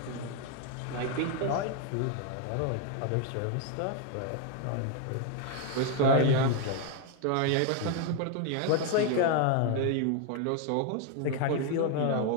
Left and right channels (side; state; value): both; different; correlation 0.01